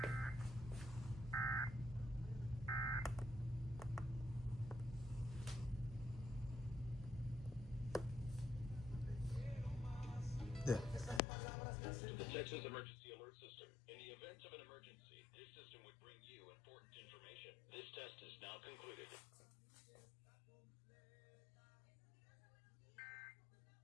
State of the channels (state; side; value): drops out; right; at 11.2 s